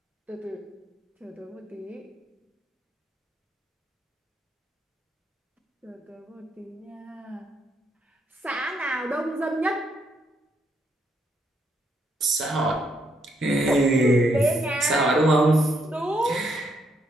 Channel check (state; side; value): normal; both; correlation 0.75